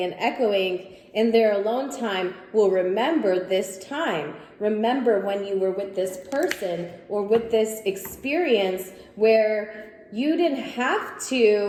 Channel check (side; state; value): both; identical; correlation 1.00